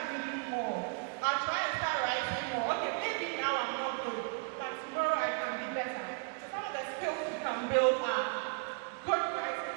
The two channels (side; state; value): left; quieter; 37.5 dB